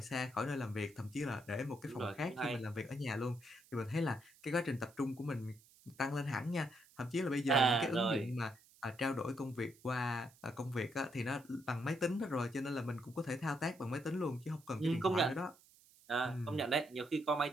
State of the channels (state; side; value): noise; right; hiss, 26 dB below the sound